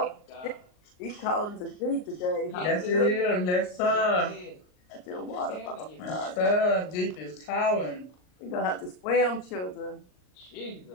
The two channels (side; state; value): right; late; 39 ms